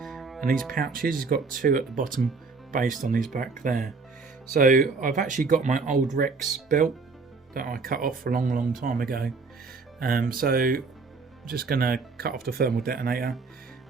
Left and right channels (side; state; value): left; quieter; 4.3 dB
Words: and these pouches, he's got 2 at the bottom based on his back there. So I've actually got my old Rex belt that I cut off a long time ago. So I'm just going to cut off the thermal detonator